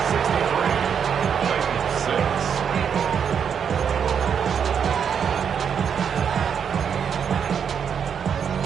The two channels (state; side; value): quieter; left; 7.4 dB